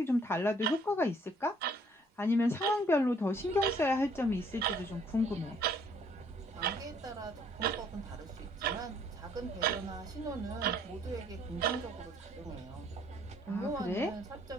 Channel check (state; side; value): normal; both; correlation 0.62